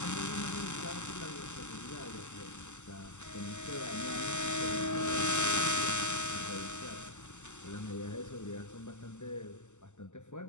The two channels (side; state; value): right; late; 0.84 ms